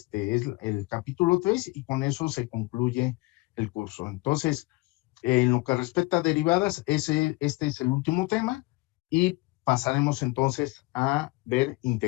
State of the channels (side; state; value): right; quieter; 23.2 dB